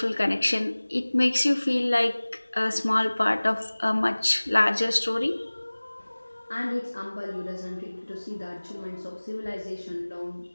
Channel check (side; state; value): both; inverted; correlation -1.00